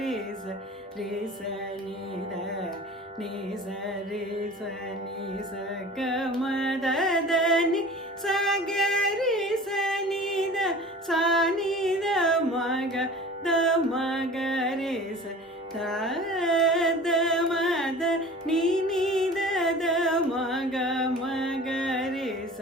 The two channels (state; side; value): normal; both; correlation 0.41